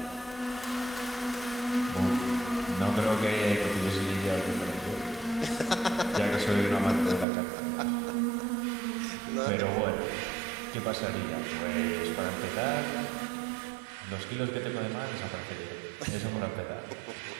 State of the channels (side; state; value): left; drops out; at 7.2 s